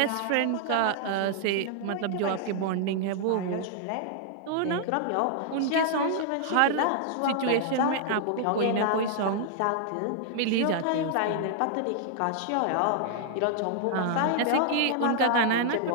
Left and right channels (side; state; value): both; different; correlation -0.01